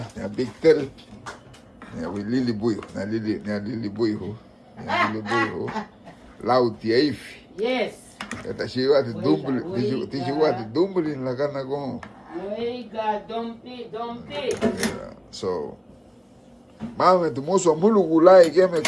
Da big tel. Ya we lili buio. Na lili buio. Lauti eif. Yes. Esta chiva de dumbulin. Ti chiva de dumbulin la cana con. Oiga, dompi. So. Mame, tu moço mulu gulai que me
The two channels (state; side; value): identical; both; correlation 1.00